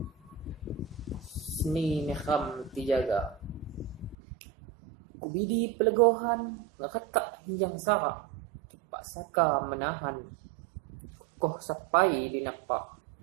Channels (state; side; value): drops out; left; at 4.2 s